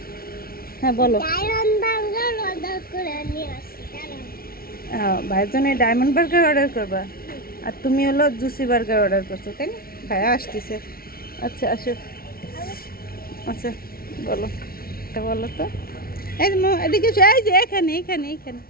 হ্যাঁ বলো। ভাইয়ের জন্য ডায়মন্ড বার্গার অর্ডার করবা, আর তুমি হলো জুসি বার্গার অর্ডার করছো, তাই না? ভাইয়া আসতেছে। আচ্ছা আসো। আচ্ছা বলো, বলো তো। এই যে এদিকে এসো, এই যে এখানে এখানে এখানে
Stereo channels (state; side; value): late; right; 0.43 ms